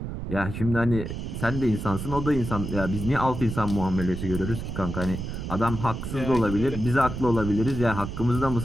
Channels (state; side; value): noise; right; rumble, 6 dB below the sound